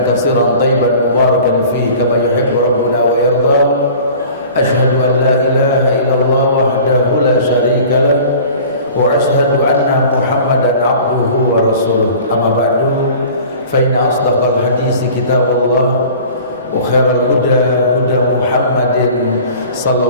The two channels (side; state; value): both; inverted; correlation -0.44